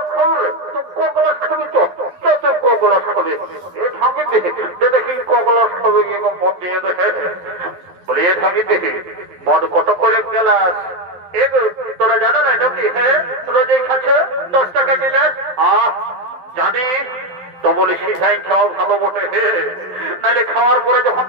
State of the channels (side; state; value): left; late; 11 ms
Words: কত করে গেলাস তোরা জানা না নাকি? হ্যাঁ রোজই খাচ্ছে 10 টাকা গেলাস। জানিস তো বলি সিধাই খাওয়া ভালো বটে, নাহলে খাওয়ার পরে যখন